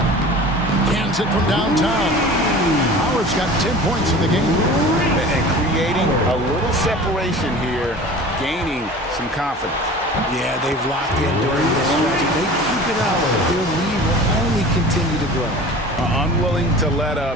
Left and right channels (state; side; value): normal; both; correlation 0.40